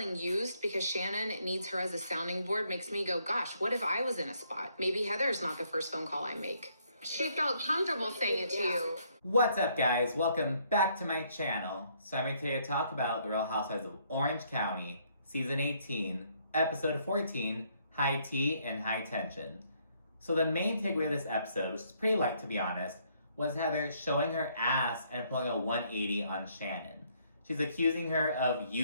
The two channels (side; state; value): both; inverted; correlation -0.69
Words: used because Shannon needs her as a sounding board makes me go, gosh, what if I was in a spot? Maybe Heather's not the first phone call I make. She felt comfortable saying it to you. What's up, guys? Welcome back to my channel. So I'm here today to talk about The Real Housewives of Orange County, Season 18, Episode 14, High Tea and High Tension. So the main takeaway of this episode, which is pretty light to be honest, was Heather showing her ass and pulling a 180 on Shannon. She's accusing her of